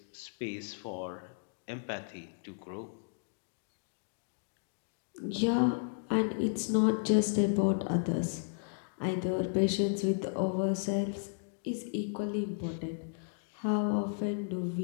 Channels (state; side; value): silent; right; digital silence